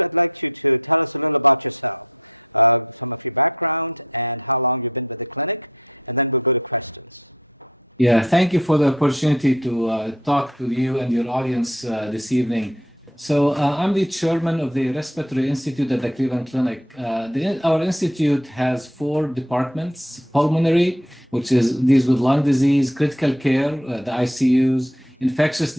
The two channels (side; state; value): both; normal; correlation 0.54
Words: like you to tell us a little about yourself, some of your background and how long you've been with the clinic, and then we'll go to questions. Yeah, thank you for the opportunity to talk to you and your audience this evening. So I'm the chairman of the Respiratory Institute at the Cleveland Clinic. Our institute has 4 departments: pulmonary, which deals with lung disease; critical care, the ICUs; infectious